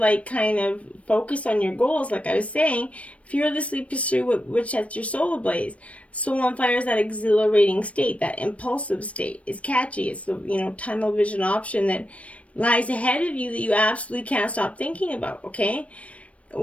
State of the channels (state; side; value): late; right; 0.064 ms